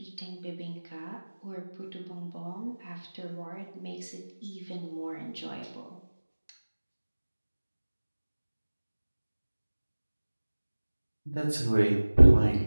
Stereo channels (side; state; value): both; inverted; correlation -1.00